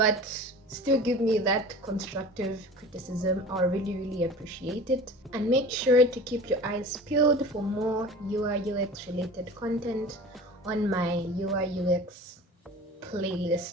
still give me that constructive criticism. I really, really appreciate it. And make sure to keep your eyes peeled for more UI UX related content on my UI UX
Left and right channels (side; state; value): both; normal; correlation 0.39